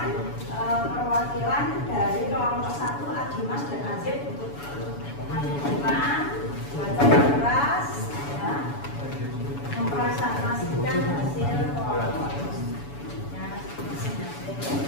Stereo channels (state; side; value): late; right; 7.0 ms